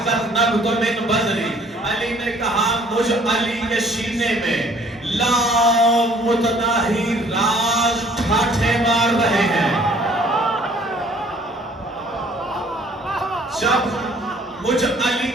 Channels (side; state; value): both; normal; correlation 0.57